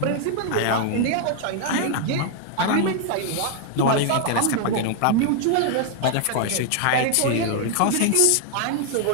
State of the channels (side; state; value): both; different; correlation 0.00